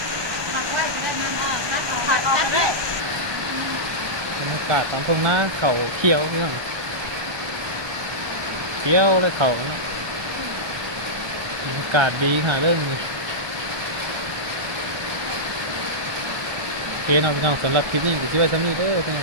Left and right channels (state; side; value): late; left; 1.2 ms